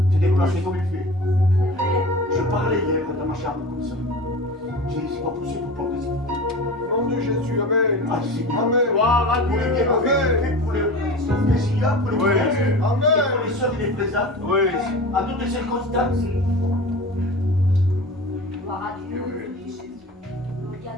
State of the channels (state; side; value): normal; both; correlation 0.34